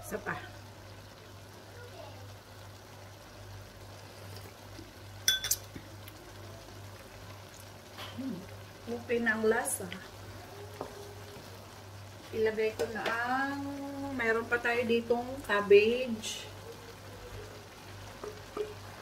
Isa pa. Okay na ang lasa. Ilagay ko na ang mayroon pa tayo ditong cabbage.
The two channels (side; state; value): both; identical; correlation 1.00